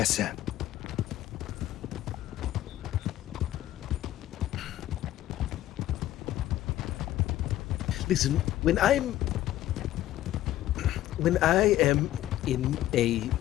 sir. Listen, when I am in a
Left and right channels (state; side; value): quieter; right; 13.9 dB